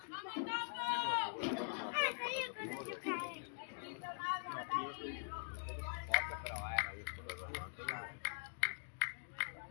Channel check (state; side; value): silent; right; digital silence